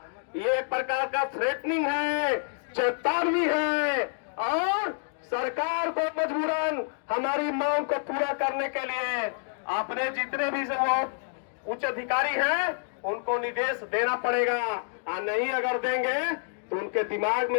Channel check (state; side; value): silent; right; digital silence